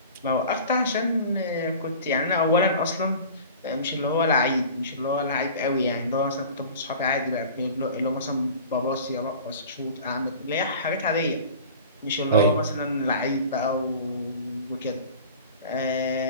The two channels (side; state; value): both; inverted; correlation -0.40